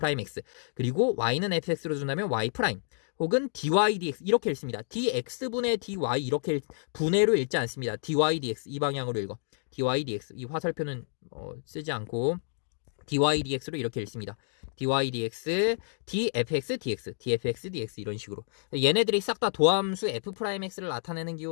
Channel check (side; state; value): right; silent; digital silence